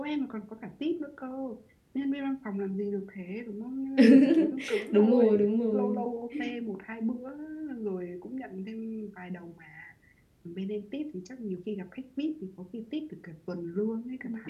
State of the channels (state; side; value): identical; both; correlation 1.00